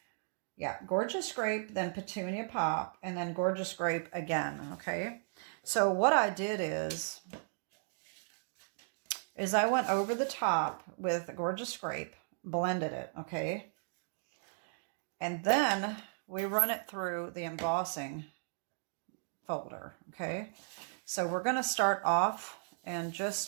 Yeah, Gorgeous Grape, then Petunia Pop, and then Gorgeous Grape again. Okay. So what I did is I went over the top with Gorgeous Grape, blended it, okay? And then we run it through the embossing folder, okay? So we're going to start off and just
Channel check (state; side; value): silent; left; digital silence